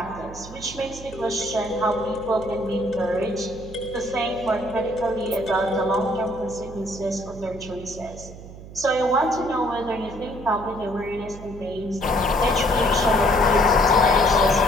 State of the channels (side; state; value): right; noise; hum, 15 dB below the sound